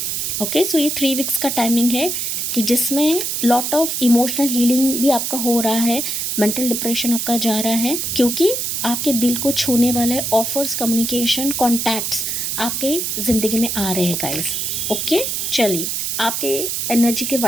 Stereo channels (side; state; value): right; noise; hiss, 1 dB below the sound